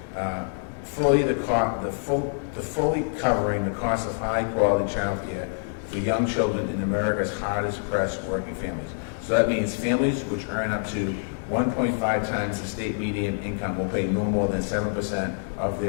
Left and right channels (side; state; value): right; silent; digital silence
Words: Fully covering the cost of high quality child care for young children in America's hardest pressed working families. So that means families which earn up to 1.5 times the state median income will pay no more than 7% of